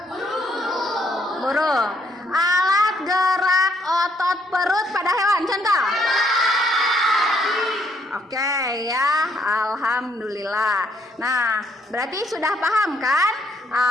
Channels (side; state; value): both; normal; correlation 0.70